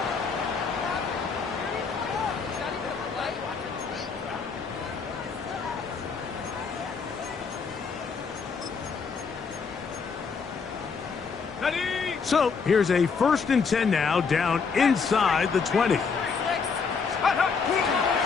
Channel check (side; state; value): right; quieter; 5.4 dB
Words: So here's a 1st and 10 now, down inside the 20.